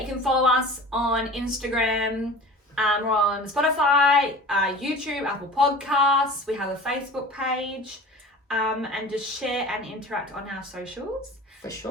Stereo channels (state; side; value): normal; both; correlation 0.39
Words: you can follow us on Instagram. We're on Spotify, YouTube, Apple Podcasts. We have a Facebook page. And just share and interact on our socials. For